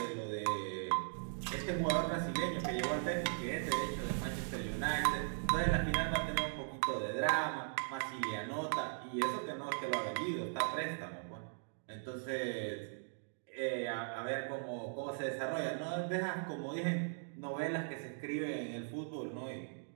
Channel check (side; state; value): left; silent; digital silence